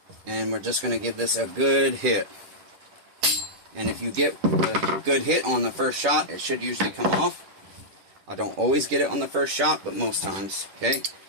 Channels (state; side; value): late; left; 10 ms